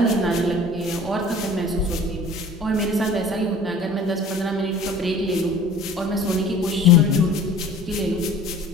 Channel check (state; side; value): normal; both; correlation 0.46